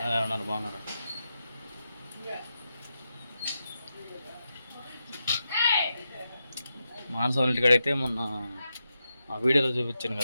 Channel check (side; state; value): both; inverted; correlation -0.87